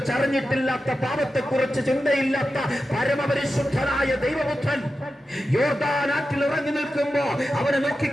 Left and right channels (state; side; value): normal; both; correlation 0.91